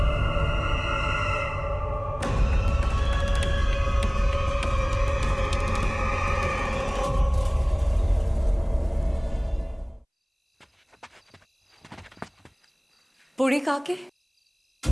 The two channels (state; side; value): identical; both; correlation 1.00